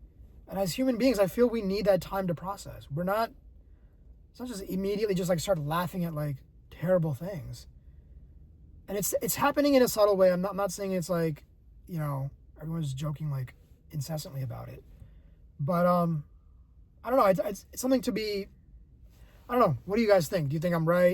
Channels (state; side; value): identical; both; correlation 1.00